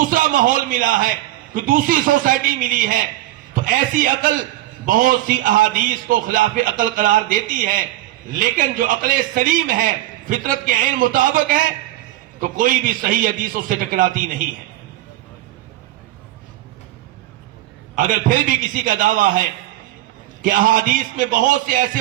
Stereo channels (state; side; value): quieter; left; 15.8 dB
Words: ماحول ملا ہے, کوئی دوسری سوسائٹی ملی ہے. تو ایسی عقل بہت سی احادیث کو خلاف عقل قرار دیتی ہے, لیکن جو عقل سلیم ہے, فطرت کے عین مطابق ہے, تو کوئی بھی صحیح حدیث اس سے ٹکراتی نہیں ہے. اگر پھر بھی کسی کا دعویٰ ہے کہ احادیث میں بہت سے ایسے